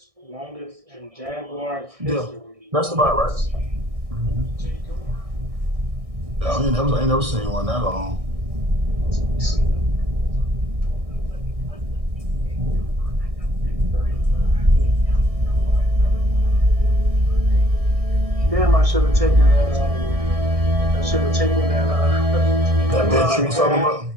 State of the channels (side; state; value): left; late; 1.6 ms